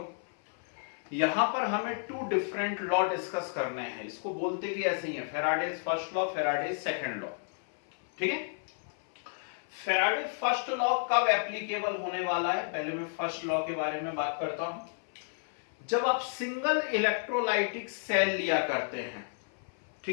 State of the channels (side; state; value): right; silent; 56 dB below the other